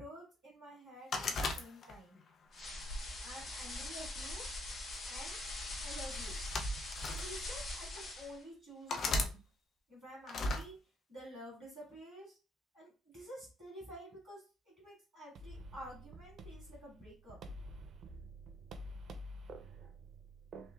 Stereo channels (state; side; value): normal; both; correlation 0.72